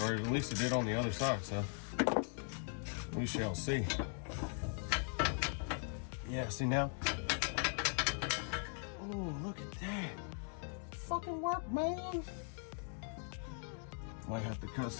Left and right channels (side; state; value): right; silent; 51 dB below the other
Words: or at least it did on the other side, so we shall see. Yeah, see now? Oh, look at that. Fucking work, man. Might have to